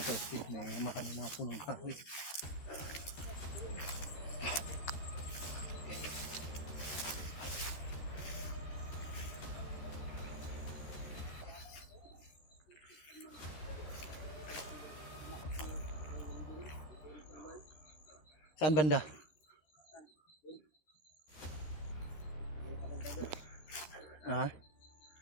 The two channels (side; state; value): right; late; 13 ms